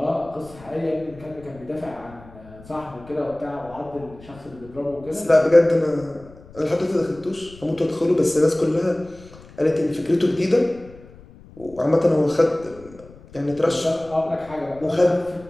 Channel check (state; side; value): noise; left; rumble, 21 dB below the sound